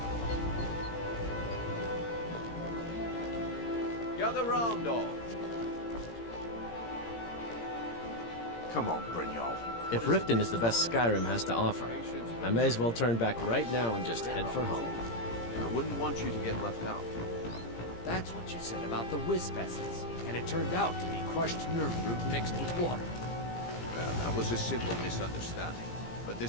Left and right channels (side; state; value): right; late; 17 ms